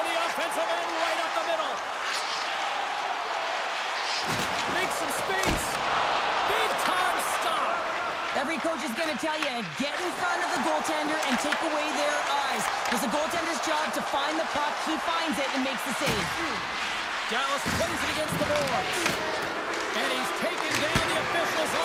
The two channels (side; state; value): both; identical; correlation 1.00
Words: offensive end right up the middle. Makes some space. Big time stop. Every coach is going to tell you, get in front of the goaltender and take away their eyes. It's the goaltender's job to find the puck. He finds it and makes the save. Dallas plays it against the boards. And he's taken down. The officials